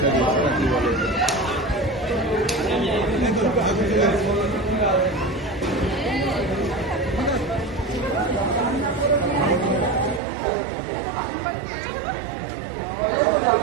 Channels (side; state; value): left; drops out; at 10.2 s